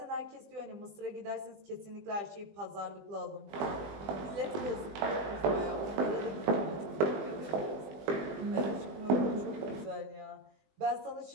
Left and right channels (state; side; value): late; left; 20 ms